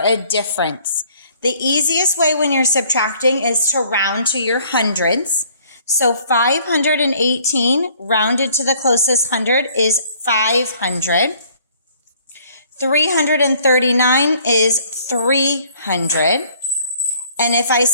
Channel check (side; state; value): both; inverted; correlation -0.59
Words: difference. The easiest way when you're subtracting is to round to your hundreds. So 518 rounded to the closest hundred is 500. 339 is 300. And if I